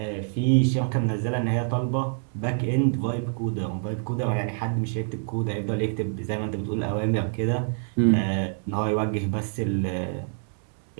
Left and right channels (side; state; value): left; silent; digital silence